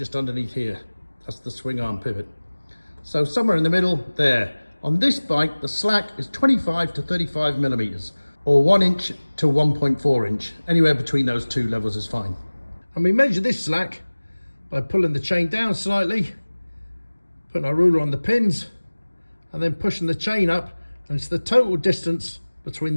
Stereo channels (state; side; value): inverted; both; correlation -1.00